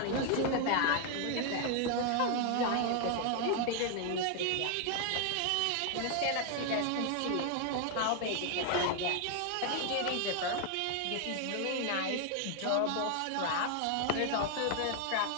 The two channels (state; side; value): different; both; correlation 0.00